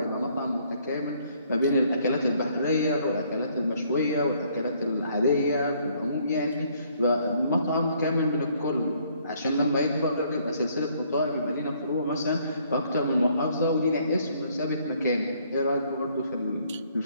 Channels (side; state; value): both; inverted; correlation -0.65